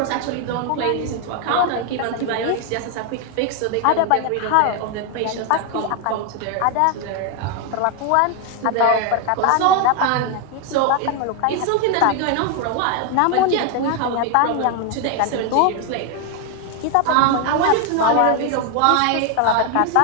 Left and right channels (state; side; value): different; both; correlation 0.01